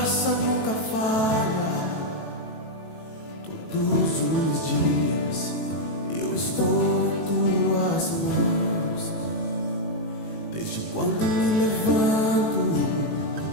nunca falha. Todos os dias eu estou em tuas mãos. Desde quando me levanto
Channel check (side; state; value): right; late; 18 ms